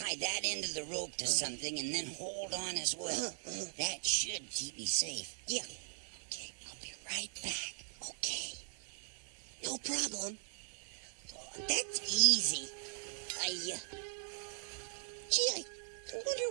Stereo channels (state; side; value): silent; left; 51 dB below the other